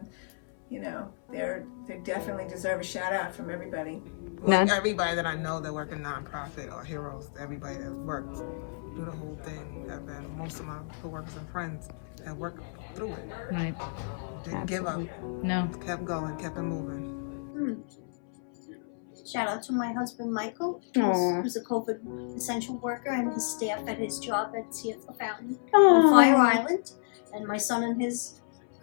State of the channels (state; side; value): silent; right; 58 dB below the other